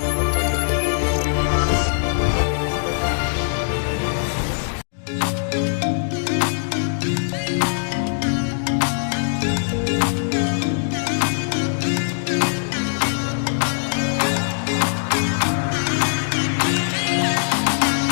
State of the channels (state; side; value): silent; right; digital silence